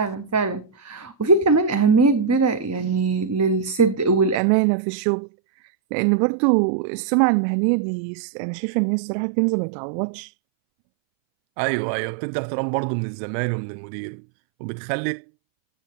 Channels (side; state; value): left; drops out; at 4.4 s